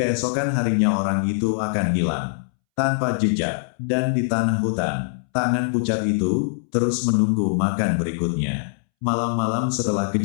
harinya orang itu akan hilang tanpa jejak, dan di tanah hutan, tangan pucat itu terus menunggu makan berikutnya. Malam-malam setelah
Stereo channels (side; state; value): right; silent; 64 dB below the other